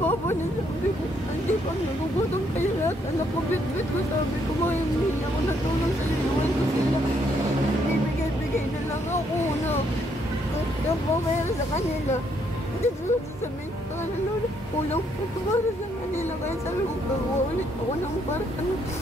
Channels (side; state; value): both; normal; correlation 0.72